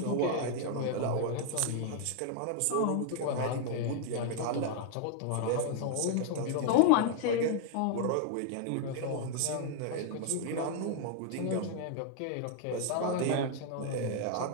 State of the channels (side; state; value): both; different; correlation 0.00